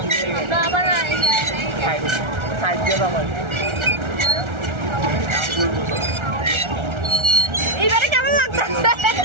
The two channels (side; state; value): left; late; 1.4 ms